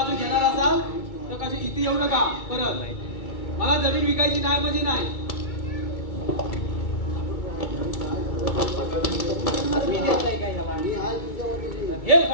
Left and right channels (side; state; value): right; late; 2.2 ms